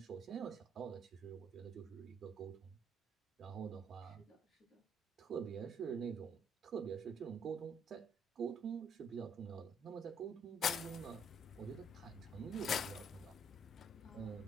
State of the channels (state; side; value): normal; both; correlation 0.66